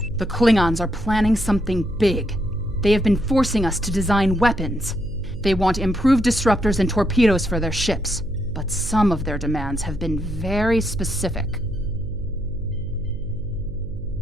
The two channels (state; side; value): noise; right; hum, 12 dB below the sound